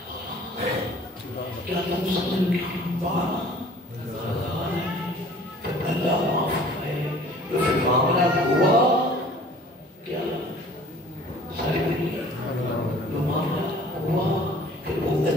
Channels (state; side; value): normal; both; correlation 0.50